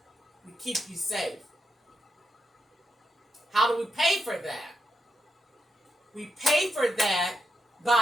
We keep you safe. How do we pay for that? We pay for that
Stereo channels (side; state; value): both; normal; correlation 0.84